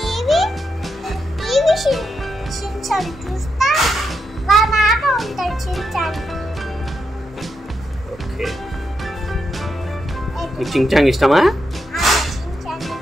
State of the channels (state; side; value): normal; both; correlation 0.83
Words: షిన్చాన్ చూస్తా. మా నాన్న ఉంటాడు షిన్చాన్. ఓకే. నీకు చించాంగ్ ఇష్టమా? షిన్చాన్